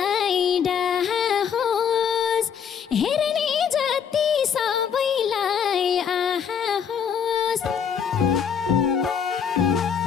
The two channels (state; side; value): quieter; right; 7.5 dB